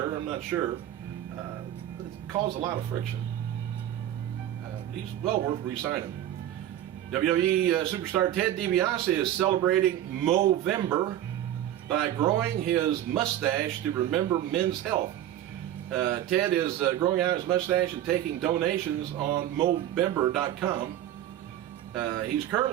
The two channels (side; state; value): left; quieter; 12.1 dB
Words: I'm not sure. It caused a lot of friction. He's well worth re-signing. WWE superstar Ted DiBiase is celebrating Movember by growing his mustache to remember men's health. Ted is growing out his mustache and taking donations on Movember.com. He's